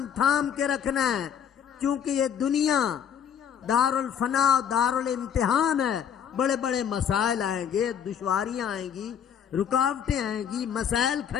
تھام کے رکھنا ہے، کیونکہ یہ دنیا دار الفنا، دار الامتحان ہے۔ بڑے بڑے مسائل آئیں گے، دشواریاں آئیں گی، رکاوٹیں آئیں گی، مسائل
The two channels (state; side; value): quieter; right; 8.4 dB